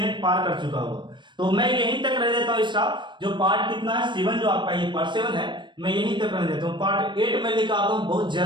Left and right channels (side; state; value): left; late; 0.22 ms